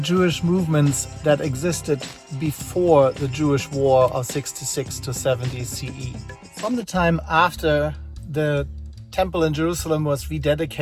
movements that existed before the Jewish War of 66 to 70 CE. From the time after the temple in Jerusalem was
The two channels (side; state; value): both; identical; correlation 1.00